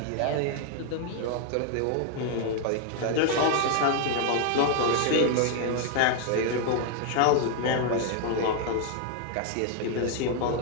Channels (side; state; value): both; different; correlation 0.00